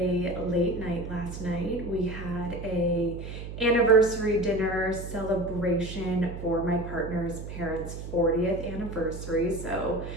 late night last night. We had a anniversary dinner celebration for my partner's parents' 40th anniversary. So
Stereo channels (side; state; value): right; noise; hum, 9 dB below the sound